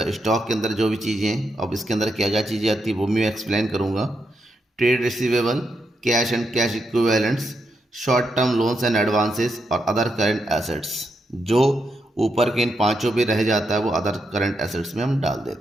स्टॉक के अंदर जो भी चीज़ें हैं, अब इसके अंदर क्या क्या चीज़ें आती है वो मैं एक्सप्लेन करूँगा। Trade receivable, cash and cash equivalents, short term loans and advances और अदर करंट एसेट्स, जो ऊपर के इन पांचों पे रह जाता है वो अदर करंट एसेट्स में हम डाल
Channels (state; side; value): normal; both; correlation 0.82